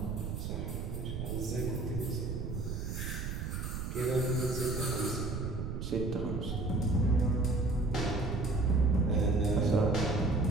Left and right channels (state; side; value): noise; right; rumble, 4 dB below the sound